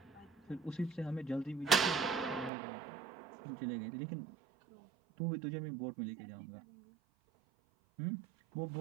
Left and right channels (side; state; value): left; drops out; at 2.5 s